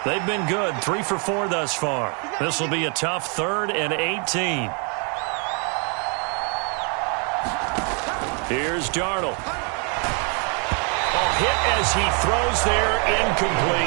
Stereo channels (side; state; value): left; quieter; 37.0 dB